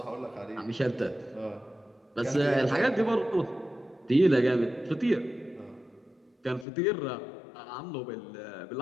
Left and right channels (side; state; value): right; drops out; at 6.7 s